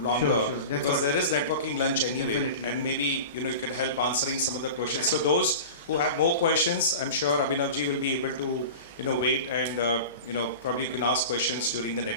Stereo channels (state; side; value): inverted; both; correlation -0.33